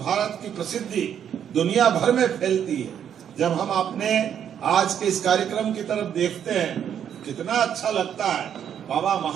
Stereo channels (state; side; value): quieter; left; 8.9 dB